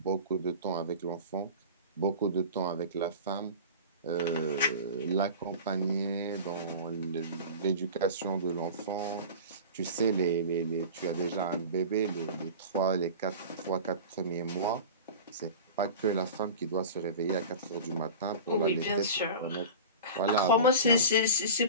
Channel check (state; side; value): inverted; both; correlation -0.33